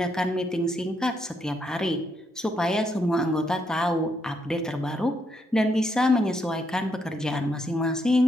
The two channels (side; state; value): both; normal; correlation 0.77